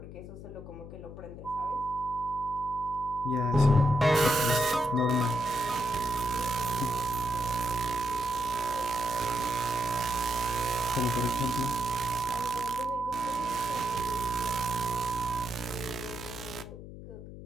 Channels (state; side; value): noise; left; hum, 13 dB below the sound